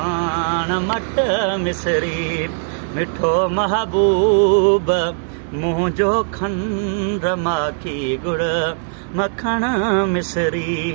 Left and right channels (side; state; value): left; silent; digital silence